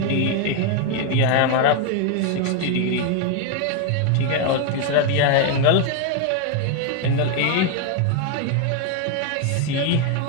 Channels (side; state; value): both; different; correlation 0.01